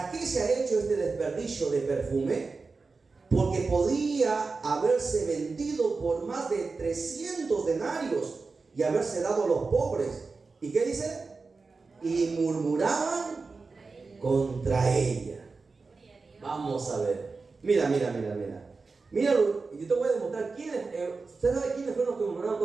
qué se ha hecho este desperdicio de perfume? Porque podía haberse vendido por más de 300 denarios y haberse dado a los pobres. ¿Y qué dice? Y murmuraban contra ella. Vamos a ver. Mira. Míralo, y yo te voy a demostrar quiénes. ¿Usted sabe quiénes fueron los que murmuraron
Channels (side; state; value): left; quieter; 4.2 dB